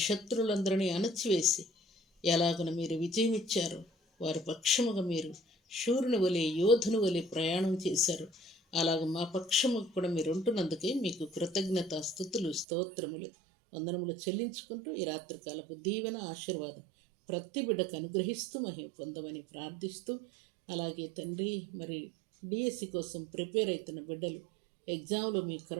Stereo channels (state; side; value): drops out; left; at 12.7 s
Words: శత్రువులందరినీ అణచివేసి ఎలాగున మీరు విజయం ఇచ్చారో వారి పక్షముగా మీరు శూరుని వలె, యోధుని వలె ప్రయాణం చేశారు. అలాగ మా పక్షముకు కూడా మీరు ఉంటున్నందుకే మీకు కృతజ్ఞత స్తుతులు స్తోత్రములు వందనములు చెల్లించుకుంటూ ఈ రాత్రికాలపు దీవెన ఆశీర్వాదం ప్రతి బిడ్డకు అనుగ్రహిస్తూ మహిమ పొందమని ప్రార్థిస్తూ, అలాగే తండ్రి మరి డిఎస్సి కోసం ప్రిపేర్ అవుతున్న బిడ్డలు ఎగ్జామ్లో మీ